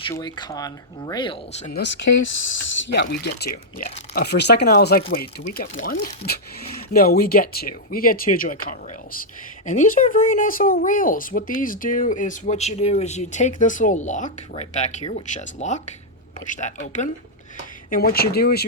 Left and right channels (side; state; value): both; normal; correlation -0.05